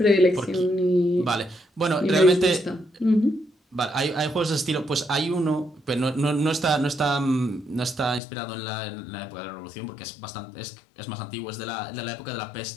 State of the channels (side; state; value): right; drops out; at 8.2 s